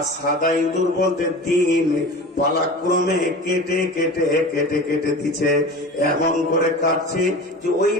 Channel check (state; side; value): normal; both; correlation 0.34